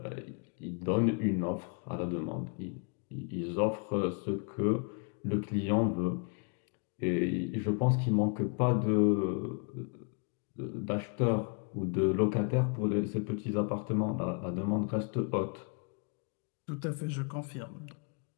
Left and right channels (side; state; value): right; quieter; 39.3 dB